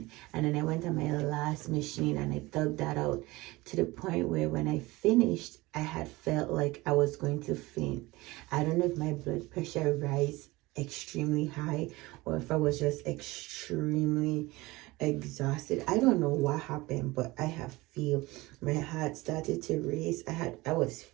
And then I went on my last machine and I dug that out to the point where when I finished, I had felt like I was going to faint. I don't know if my blood pressure extremely high, or if I was just extremely exhausted. I don't know what happened, but I have feel my heart started to race. I was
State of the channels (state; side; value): quieter; left; 21.0 dB